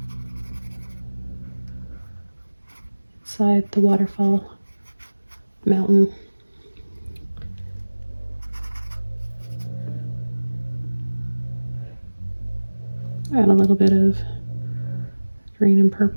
inside the waterfall mountain. Add a little bit of green and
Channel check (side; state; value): both; inverted; correlation -1.00